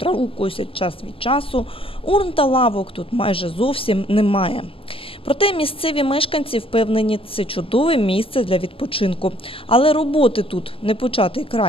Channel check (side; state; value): right; late; 0.27 ms